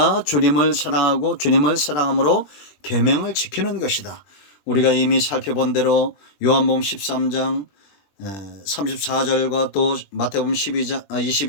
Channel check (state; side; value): late; right; 20 ms